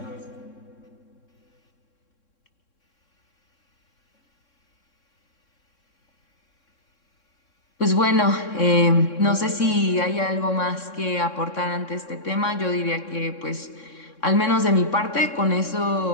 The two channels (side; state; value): right; late; 3.6 ms